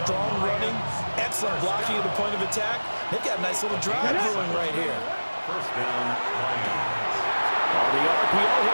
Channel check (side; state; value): both; inverted; correlation -1.00